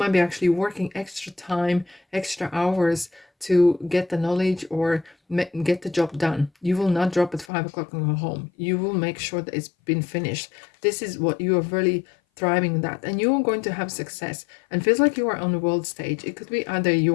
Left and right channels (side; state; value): right; drops out; at 7.5 s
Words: be actually working extra time, extra hours to get the knowledge or get the job done. You will not drop at 5 o'clock and go home. You will make sure that it's been finished. This is what you are really thriving in, that, and you're going to have success. And feels like you are on the world stage. It could be either